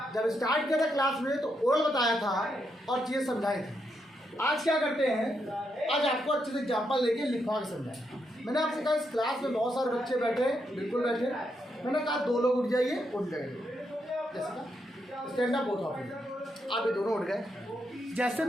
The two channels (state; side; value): normal; both; correlation 0.81